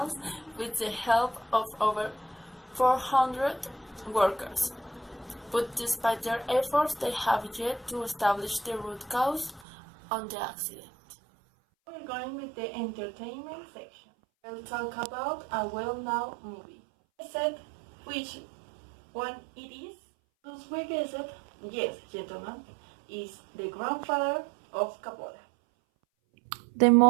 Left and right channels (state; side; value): drops out; left; at 9.6 s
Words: with the help of over 400 workers. But despite their efforts, they have yet to establish the root cause of the accident. We're going with the entertainment section. We'll talk about a well-known movie. I said which one it is? Those we guessed, yes, gentlemen, is The Grandfather of Capola. The